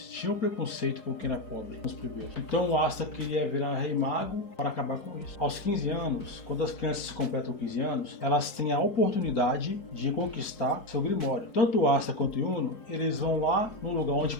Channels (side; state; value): right; late; 4.6 ms